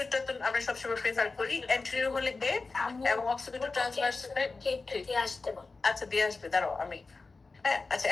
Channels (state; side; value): quieter; right; 3.9 dB